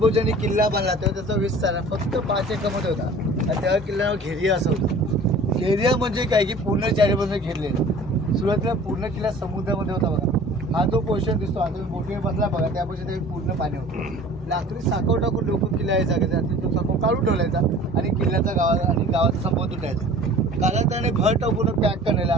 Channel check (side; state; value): both; normal; correlation 0.45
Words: किल्ला बांधला तेव्हा त्याचा विस्तार फक्त 5 एकरमध्ये होता आणि त्या किल्ल्यावर घेरिया असं होतं. घेरिया म्हणजे काय की पूर्ण चारी बाजूने घेरलेलं. सुरुवातीला पूर्ण किल्ला समुद्रामध्ये होता बघा. हा जो पोर्शन दिसतो आता बोटीवर बसला बघा त्या पोर्शन पूर्ण पाणी होतं. लाकडी साखव टाकून लोक किल्ला यायचा तो साखव काढून ठेवलायचा आणि किल्ल्याचा गावाचा संबंध तुटायचा. कालांतराने घर टाकून पॅक करण्याला